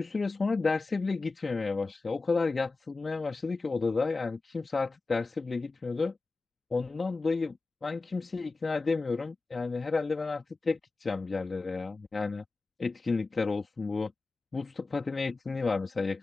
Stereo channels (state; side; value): quieter; right; 3.7 dB